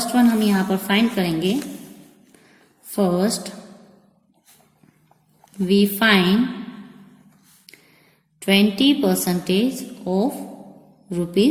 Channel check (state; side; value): identical; both; correlation 1.00